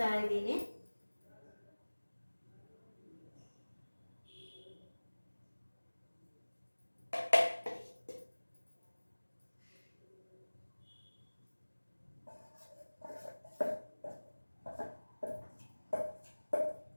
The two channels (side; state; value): both; inverted; correlation -1.00